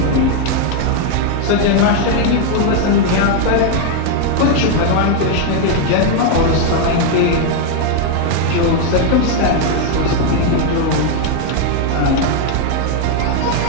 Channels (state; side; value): different; both; correlation 0.01